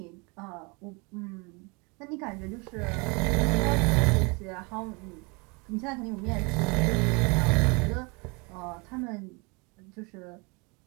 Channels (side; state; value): left; quieter; 29.8 dB